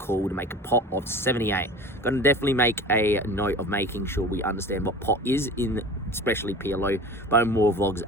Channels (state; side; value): normal; both; correlation 0.38